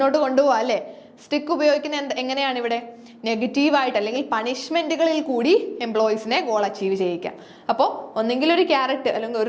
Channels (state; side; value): identical; both; correlation 1.00